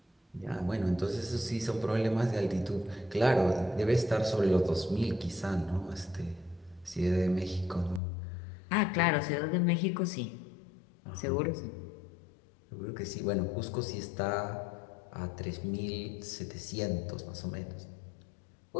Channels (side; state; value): right; drops out; at 8.0 s